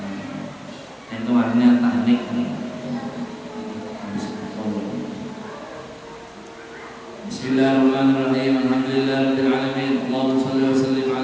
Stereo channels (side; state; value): both; identical; correlation 1.00